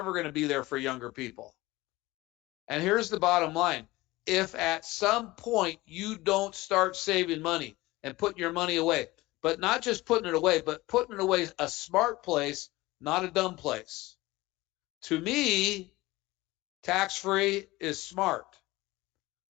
going to be there for younger people. And here's the bottom line. If at some point you don't start saving money and putting your money away, but not just putting it away, but putting it away a smart place, not a dumb place. To me, tax-free is smart.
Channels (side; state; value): right; quieter; 19.7 dB